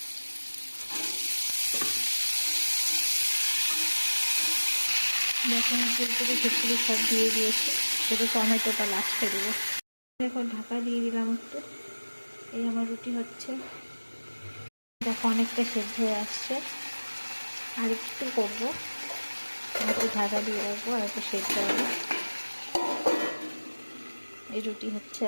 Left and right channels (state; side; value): inverted; both; correlation -1.00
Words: যখন ফুলকপি ফুলকপি সব দিয়ে দিয়েছি, শুধু টমেটোটা লাস্টে দেবো। দেখো ঢাকা দিয়ে দিলাম একটু। এই আমার রুটি হচ্ছে, দেখো অনেকটা সেদ্ধ হয়ে আসছে। আর একটু করবো, একটু ঢাকা দিয়ে রাখবো আর একটু সেদ্ধ হবে। এই রুটি হচ্ছে